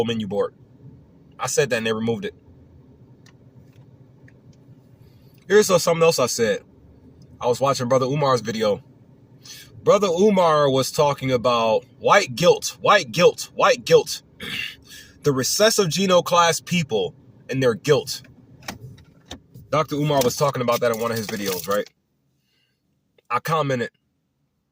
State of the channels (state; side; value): identical; both; correlation 1.00